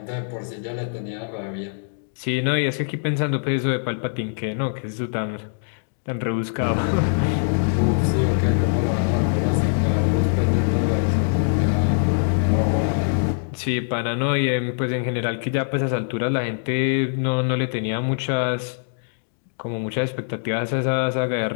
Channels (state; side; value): silent; right; digital silence